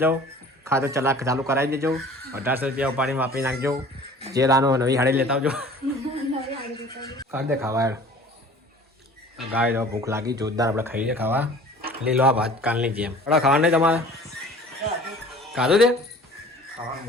ખાતું ચાલુ કરાવી દેજો 1800 રૂપિયા ઉપાડીને વાપરી નાખજો જે લાનો નવી હાડી લેતા આવજો નવી હાડી દેતા કાઢ દે ખાવા યાર ગાય તો ભૂખ લાગી જોરદાર આપણે ખાઈએ ખાવા લીલો આ ભાત કાલની જેમ આપણા ખાવા નહીં તમારે ખાધું તે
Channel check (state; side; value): normal; both; correlation 0.46